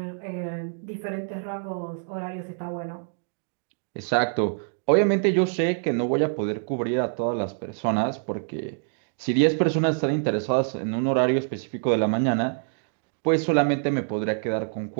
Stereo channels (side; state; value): left; silent; digital silence